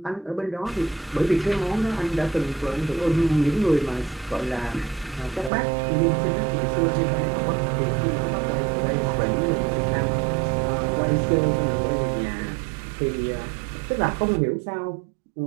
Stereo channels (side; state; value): left; drops out; at 5.5 s